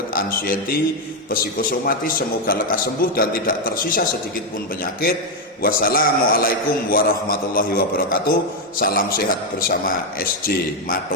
anxiety, psikosomatis, semoga lekas sembuh dan tidak tersisa sedikit pun penyakit. Wassalamualaikum warahmatullahi wabarakatuh. Salam sehat bersama SJ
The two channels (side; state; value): both; normal; correlation 0.04